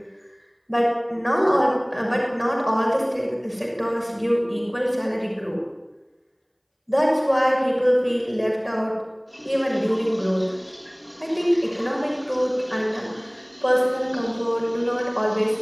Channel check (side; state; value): both; identical; correlation 1.00